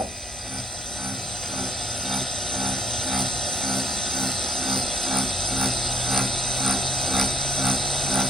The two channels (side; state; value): both; normal; correlation 0.67